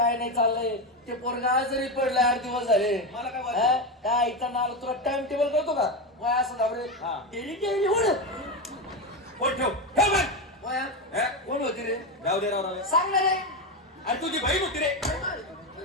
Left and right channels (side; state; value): both; normal; correlation 0.14